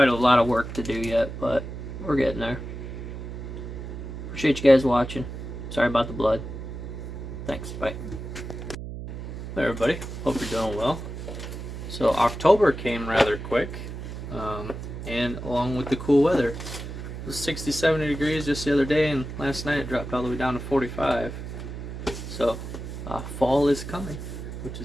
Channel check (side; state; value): right; noise; hum, 8 dB below the sound